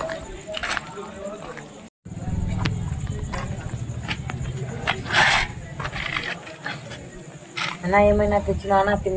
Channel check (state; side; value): identical; both; correlation 1.00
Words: అన్నా ఏమైనా తెచ్చినా